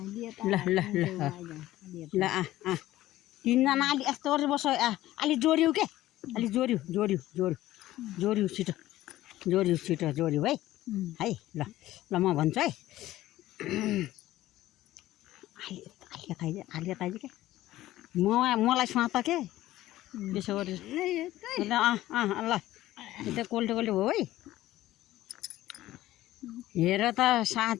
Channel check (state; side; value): quieter; right; 15.3 dB